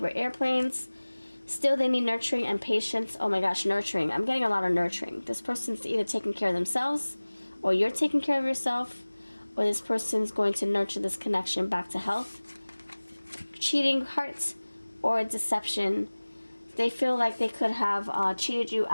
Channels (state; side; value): inverted; both; correlation -1.00